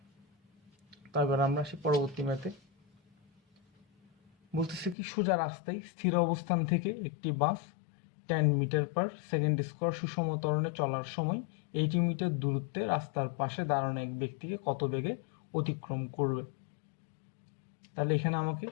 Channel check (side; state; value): right; drops out; at 5.0 s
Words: তারপর আমরা আসি পরবর্তী ম্যাথে। বলতেছে কি, সোজা রাস্তায় স্থির অবস্থান থেকে একটি বাস 10 মিটার পার সেকেন্ড স্কোয়ার সুষম ত্বরণে চলার সময় 80 মিটার দূরত্বে রাস্তার পাশে দাঁড়ানো এক ব্যক্তিকে কত বেগে অতিক্রম করবে। তাহলে এখানে আমাকে